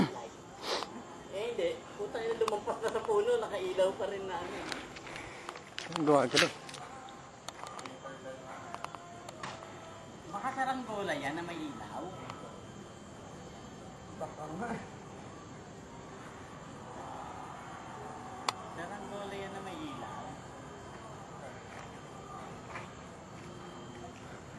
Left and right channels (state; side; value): identical; both; correlation 1.00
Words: Eh hindi, puta yun lumampas na sa puno, nakailaw pa rin na ano. Gawa ka doon. Baka saranggola yan na may ilaw. Baka nga. Saranggola yan na may ilaw.